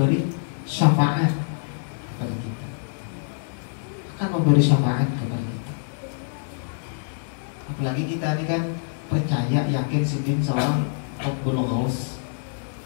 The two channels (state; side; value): silent; right; 62 dB below the other